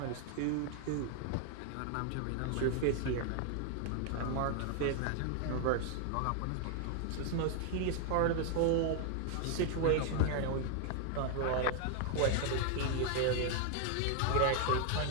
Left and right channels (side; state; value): both; different; correlation 0.00